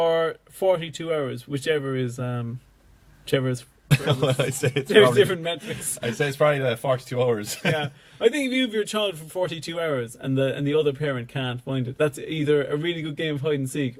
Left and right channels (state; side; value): identical; both; correlation 1.00